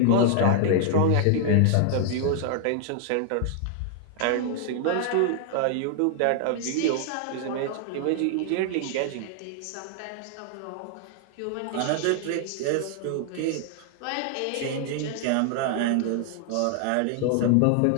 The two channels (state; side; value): different; both; correlation 0.00